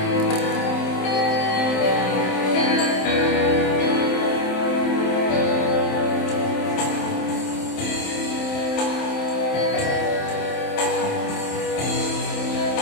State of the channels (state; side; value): late; right; 27 ms